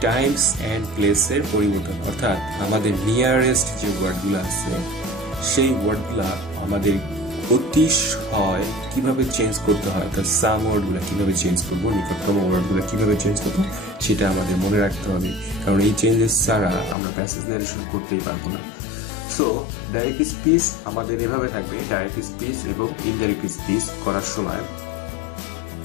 টাইমস অ্যান্ড প্লেসের পরিবর্তন, অর্থাৎ আমাদের নিয়ারেস্ট যে ওয়ার্ডগুলো আছে সেই ওয়ার্ডগুলা আমাদের অতিশয় কিভাবে চেঞ্জ করতে হয়, তার সাম ওয়ার্ডগুলো কিভাবে চেঞ্জ করবো, নিকটতম ওয়ার্ডগুলো কিভাবে চেঞ্জ করবো সেটা আমাদের মনে রাখতে হবে, কারণ এই চেঞ্জেস ছাড়া আমরা প্যাসেজ ন্যারেশন করতেই পারবো না। সো ডাইরেক্ট স্পিচ আমাদের এভাবে থাকবে, ডাইরেক্ট স্পিচ এবং ইনডাইরেক্ট স্পিচ করার সময়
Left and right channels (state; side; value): drops out; right; at 16.9 s